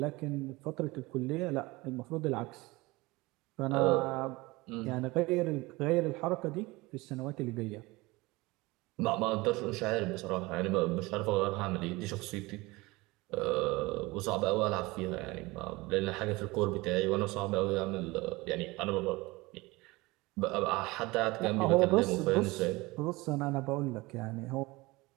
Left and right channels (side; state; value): left; quieter; 22.2 dB